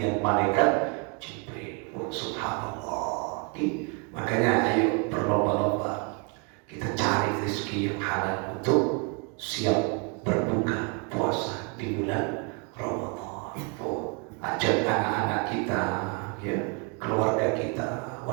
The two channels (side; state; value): left; quieter; 33.8 dB